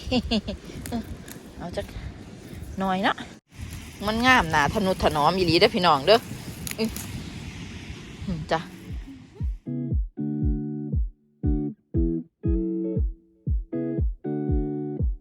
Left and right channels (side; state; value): both; identical; correlation 1.00